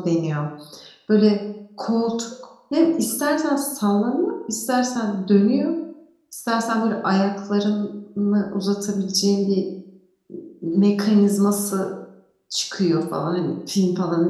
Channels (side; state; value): both; identical; correlation 1.00